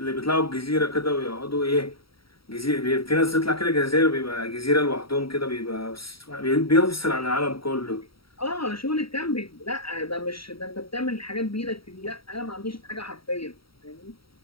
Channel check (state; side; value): late; right; 0.75 ms